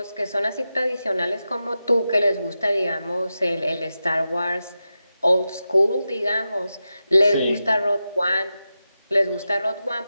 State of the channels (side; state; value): both; inverted; correlation -0.91